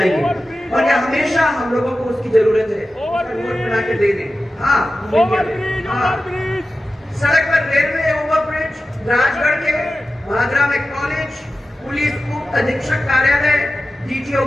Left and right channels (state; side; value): normal; both; correlation 0.94